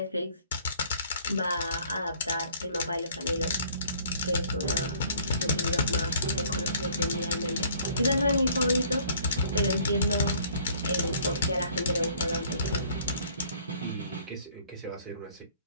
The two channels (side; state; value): both; inverted; correlation -0.57